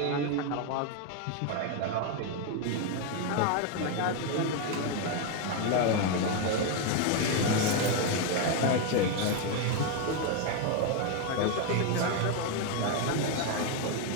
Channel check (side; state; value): both; different; correlation 0.01